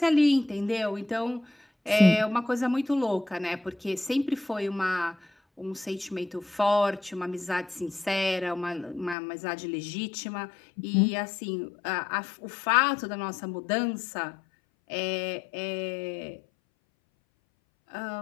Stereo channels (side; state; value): right; drops out; at 9.2 s